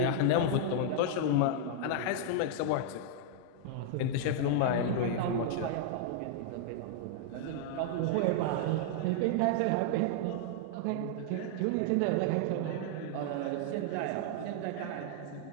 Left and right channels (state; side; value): different; both; correlation -0.01